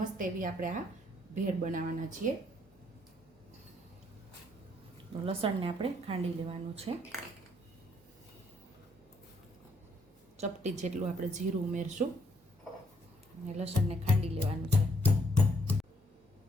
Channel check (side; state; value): both; normal; correlation 0.69